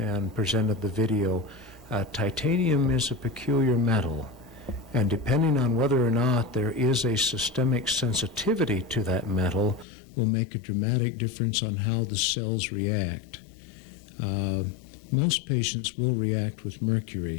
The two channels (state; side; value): drops out; right; at 9.9 s